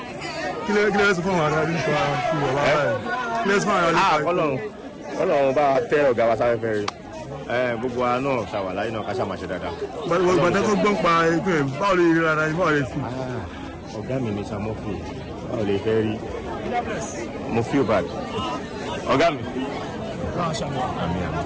Let's go on. Let's go on. Ọlọ́run bá tẹ ọ̀gá wa sáré fẹ́ rí gbogbo wa náà ṣàwàlá iná ká ṣàmàṣe dáadáa. Gbàdá tó gbọ́n pa ẹgbẹ́ báwo lè rí rárá báwo lè fi. Ọ̀gá mi ní Samofi báwo lè fẹ́ rí mo feel bad. Ọ̀gá mi.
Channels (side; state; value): both; identical; correlation 1.00